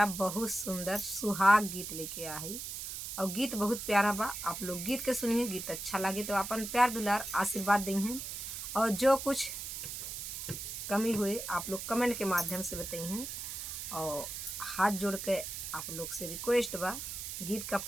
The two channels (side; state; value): right; noise; hiss, 6 dB below the sound